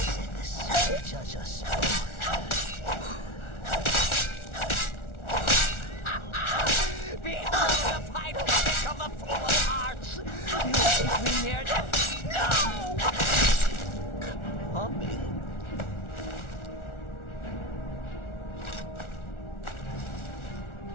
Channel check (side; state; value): right; late; 1.4 ms